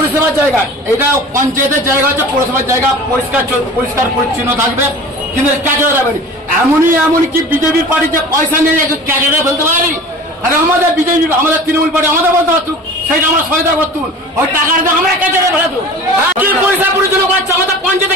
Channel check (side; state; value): both; normal; correlation 0.39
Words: জায়গা? এটা পঞ্চায়েতের জায়গা হচ্ছে, পৌরসভার জায়গা, পরিষ্কার পরিচ্ছন্ন থাকবে, কিন্তু ক্যাচের যাবে। এমনই কি বিজেপির পার্টিতে পয়সা নিয়ে ক্যাচেরে ফেলতে পারি? আর আমাদের বিজেপি, আমাদের তৃণমূল পার্টি আমাদের বলতে পারতুক, সেটা আমরা সহায়তা করতুন। ওই টাকাটা আমরা ক্যাচেরে ফেলাতুন। কি পরিষ্কার পরিচ্ছন্ন করছে? আমাদের